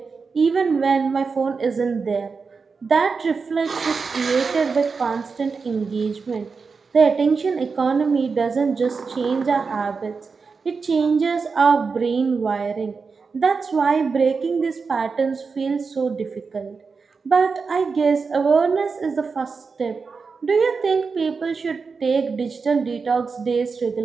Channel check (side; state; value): left; quieter; 4.9 dB